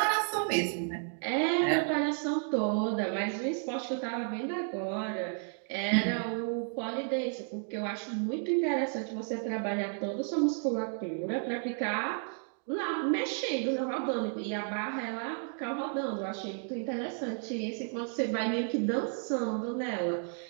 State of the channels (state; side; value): silent; left; 56 dB below the other